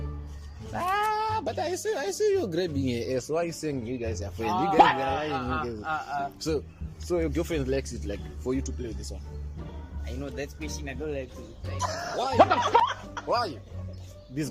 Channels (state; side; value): identical; both; correlation 1.00